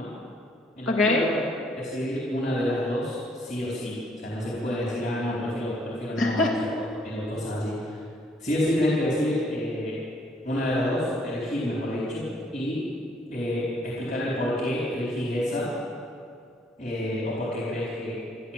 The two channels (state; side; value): normal; both; correlation 0.66